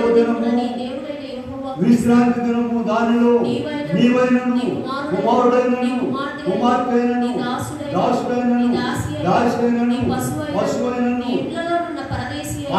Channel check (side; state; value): both; identical; correlation 1.00